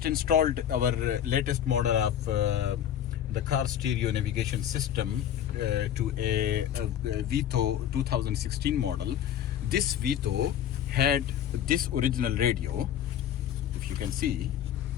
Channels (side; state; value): right; quieter; 10.1 dB